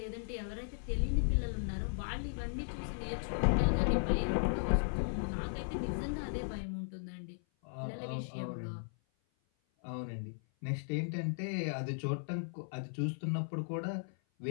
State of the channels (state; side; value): silent; right; 53 dB below the other